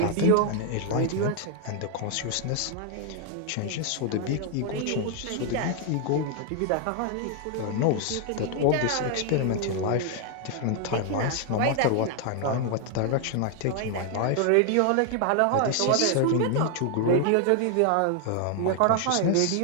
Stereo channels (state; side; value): different; both; correlation 0.00